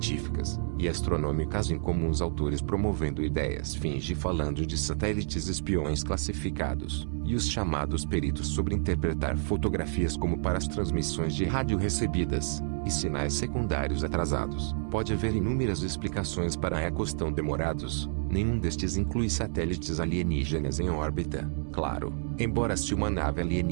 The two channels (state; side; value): silent; left; digital silence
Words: e astronômicas incomuns, autores promovendo ideias finge falando de satélites espiões classificados, e os chamados peritos sobre interpretar fotografias como para as transmissões de rádio recebidas, e sinais secundários atrasados. Pode haver inúmeras explicações para ecos tão demorados. Nenhum destes inclui satélites alienígenas em órbita, claro. Embora se uma nave